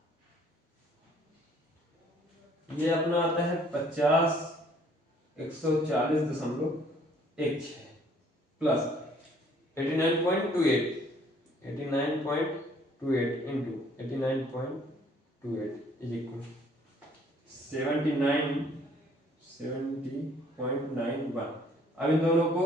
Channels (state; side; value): normal; both; correlation 0.60